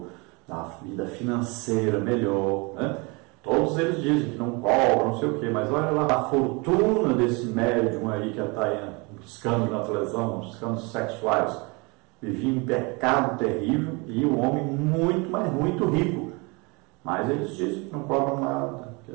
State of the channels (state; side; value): quieter; left; 28.7 dB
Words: da vida financeira melhor, né? Todos eles dizem que não cobram, não sei o quê, mas olha lá a fortuna desse médium aí que está aí buscando na televisão, buscando sexuais, vivia em pecado terrível e o homem muito, mas muito rico. Mas eles dizem que não cobram nada, que